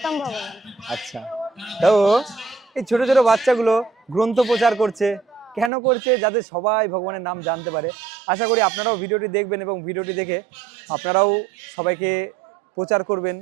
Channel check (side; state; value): left; drops out; at 5.7 s